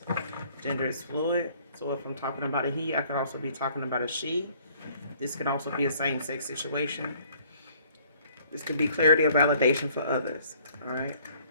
Gender is fluid. So if I'm talking about a he, I could also be talking about a she. This could also be a same-sex situation. This could be clarity or validation for others. All right?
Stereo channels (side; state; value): both; inverted; correlation -0.59